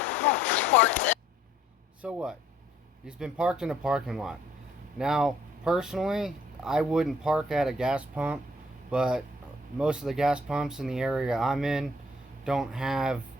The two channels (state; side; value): normal; both; correlation 0.62